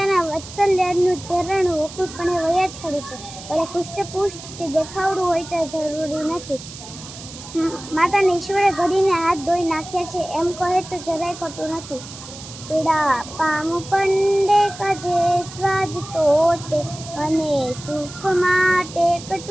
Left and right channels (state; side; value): noise; right; hiss, 14 dB below the sound